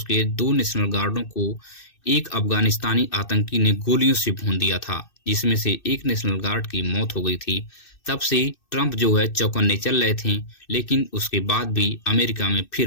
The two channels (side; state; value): right; late; 2.6 ms